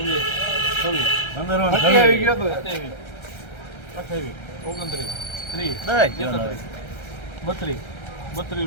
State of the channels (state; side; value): late; right; 1.3 ms